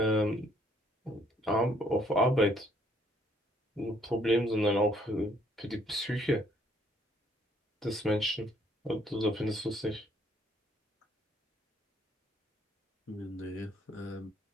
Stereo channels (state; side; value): normal; both; correlation 0.66